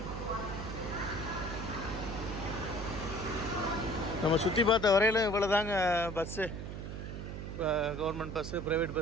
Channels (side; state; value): right; noise; hum, 7 dB below the sound